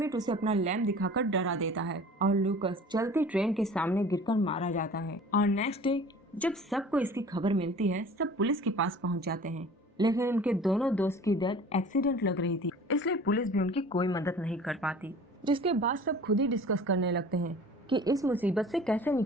उसे अपना लैंप दिखाकर डरा देता है और लूकस चलती ट्रेन के सामने गिरकर मारा जाता है। और नेक्स्ट डे जब सबको इसकी खबर मिलती है, सब पुलिस के पास पहुंच जाते हैं, लेकिन उनके दोनों दोस्त की डेथ एक्सीडेंट लग रही थी, इसलिए पुलिस भी उनकी कोई मदद नहीं कर पाती। जिसके बाद सब खुद ही डिस्कस करने लगते हैं कि इस मुसीबत से कैसे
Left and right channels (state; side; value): normal; both; correlation 0.44